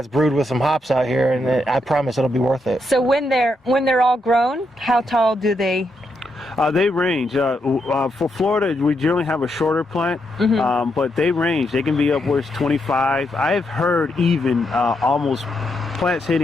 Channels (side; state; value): both; normal; correlation 0.81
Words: brewed with some hops out here, and I promise it'll be worth it. So when they're all grown, how tall do they? They range. For Florida, we generally have a shorter plant, but they range. They can be upwards 25. I've heard even plants